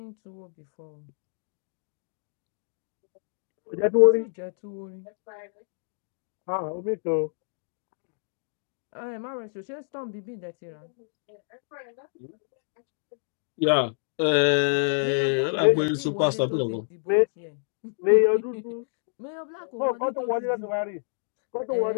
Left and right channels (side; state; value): right; silent; digital silence